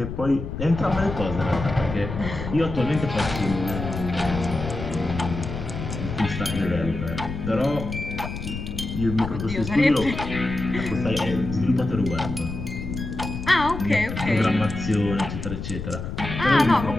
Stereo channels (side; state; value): left; noise; rumble, 7 dB below the sound